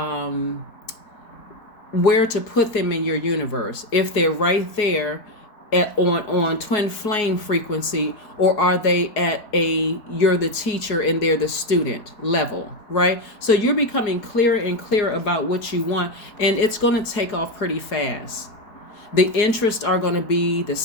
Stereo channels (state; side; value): late; right; 4.8 ms